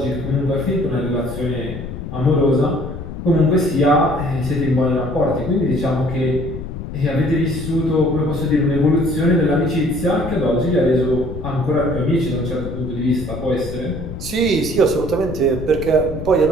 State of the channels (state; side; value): noise; left; rumble, 8 dB below the sound